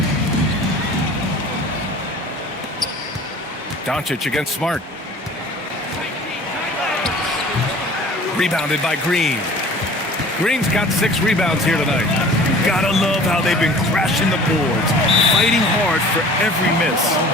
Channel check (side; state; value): both; normal; correlation 0.46